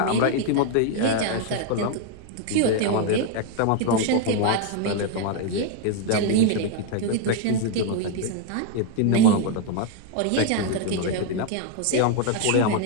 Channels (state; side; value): different; both; correlation 0.00